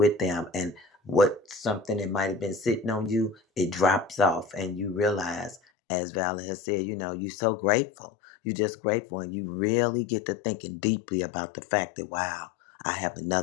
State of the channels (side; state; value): right; drops out; at 5.6 s